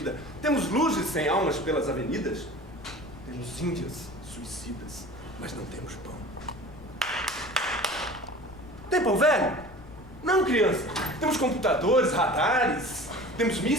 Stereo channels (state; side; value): noise; left; rumble, 19 dB below the sound